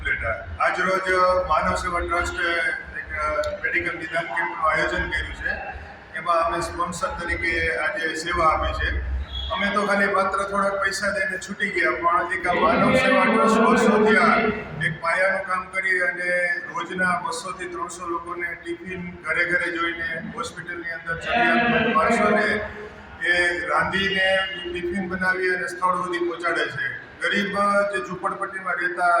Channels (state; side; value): identical; both; correlation 1.00